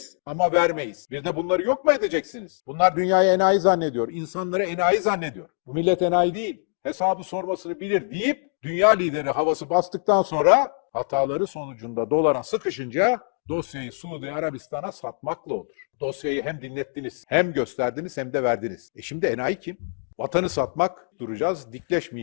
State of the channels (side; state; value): right; silent; 62 dB below the other